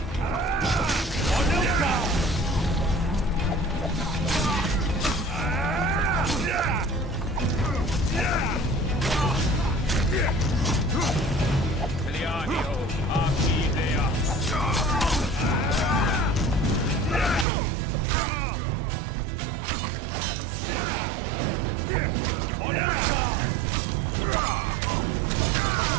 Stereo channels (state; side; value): drops out; left; at 17.4 s